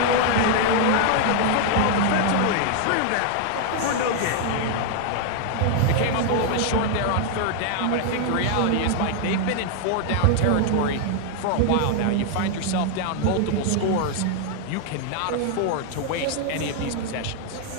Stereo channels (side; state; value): both; different; correlation 0.00